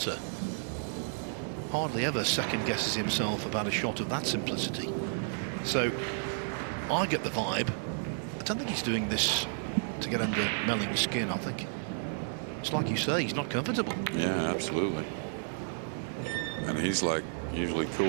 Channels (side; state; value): left; silent; digital silence